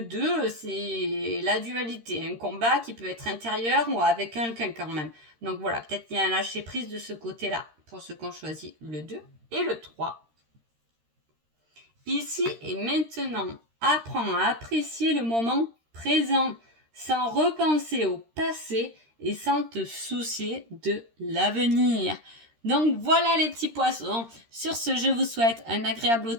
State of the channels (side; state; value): left; late; 13 ms